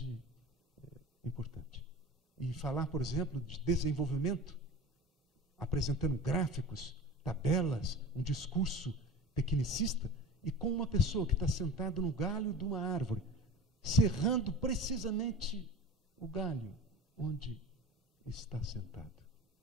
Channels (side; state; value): both; normal; correlation 0.35